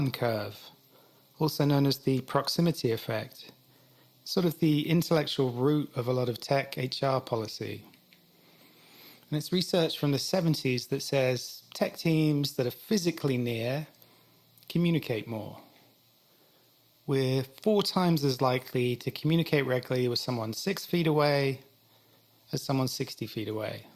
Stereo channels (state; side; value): identical; both; correlation 1.00